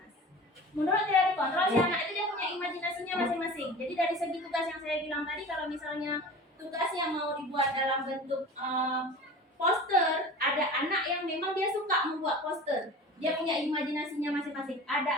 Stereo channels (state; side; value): normal; both; correlation 0.37